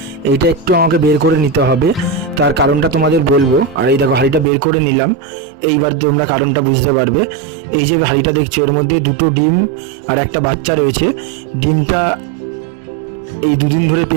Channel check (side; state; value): left; drops out; at 4.5 s